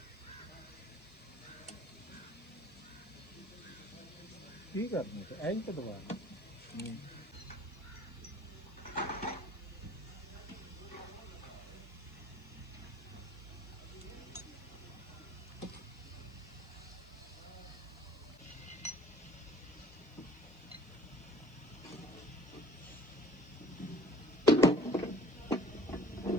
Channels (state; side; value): noise; right; hiss, 30 dB below the sound